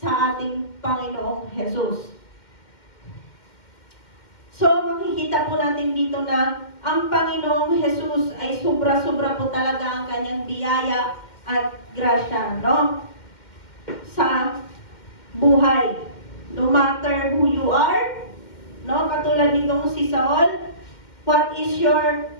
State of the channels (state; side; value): late; right; 2.1 ms